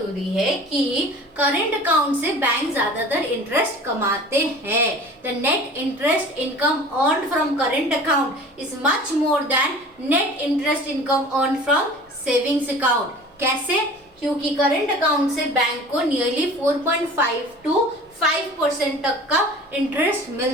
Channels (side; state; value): both; normal; correlation 0.42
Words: है कि करंट अकाउंट से बैंक ज्यादातर इंटरेस्ट कमाते हैं. The net interest income earned from current account is much more than net interest income earned from savings account. कैसे? क्योंकि करंट अकाउंट से बैंक को नियरली 4.5 to 5% तक का इंटरेस्ट